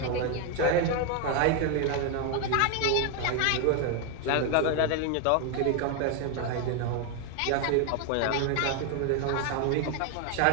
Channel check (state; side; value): different; both; correlation 0.01